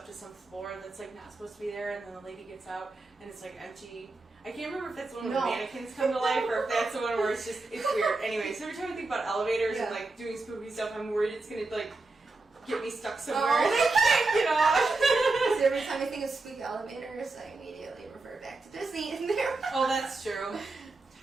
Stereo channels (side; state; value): left; quieter; 3.4 dB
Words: to some floor that's like not supposed to be there, and then the lady gets out and it's like empty. I can't remember if that's the one where the mannequins come to life or if that's the one where it's weird. Anyway, so every time I think about elevators and like doing spooky stuff, I'm worried it's gonna like get me stuck somewhere and I can't get off. So every time I think of spooky elevators, I immediately refer back to Disney in there. Oh, that's true.